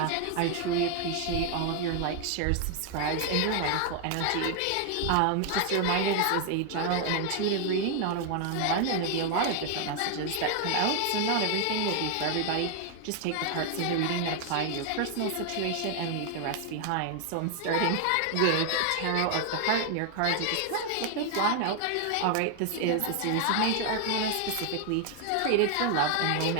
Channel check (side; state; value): both; different; correlation 0.00